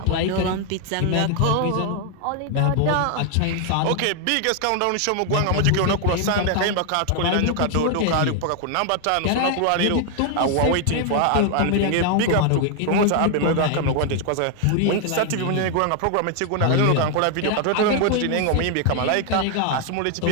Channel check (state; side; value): different; both; correlation 0.00